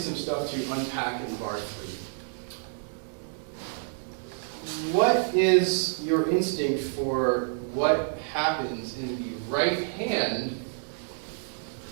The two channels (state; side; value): silent; left; digital silence